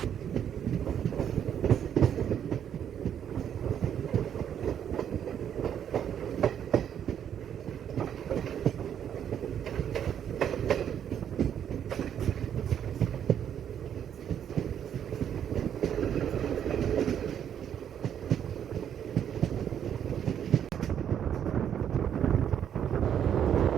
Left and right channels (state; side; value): quieter; left; 9.2 dB